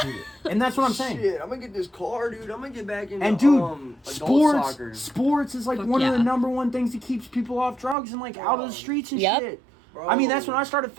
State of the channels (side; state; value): left; drops out; at 8.0 s